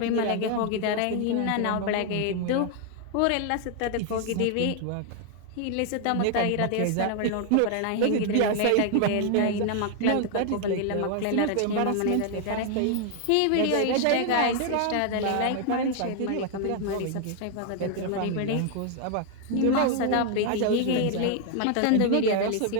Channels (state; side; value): different; both; correlation 0.00